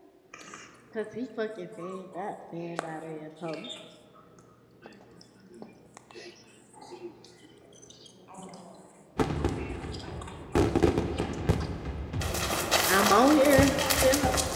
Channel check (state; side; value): identical; both; correlation 1.00